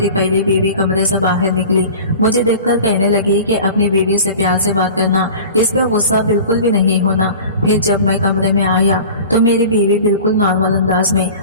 पहली बीवी कमरे से बाहर निकली। मुझे देखकर कहने लगी कि अपनी बीवी से प्यार से बात करना, इस पे गुस्सा बिल्कुल भी नहीं होना। फिर जब मैं कमरे में आया तो मेरी बीवी बिल्कुल नॉर्मल अंदाज में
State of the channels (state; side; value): inverted; both; correlation -0.40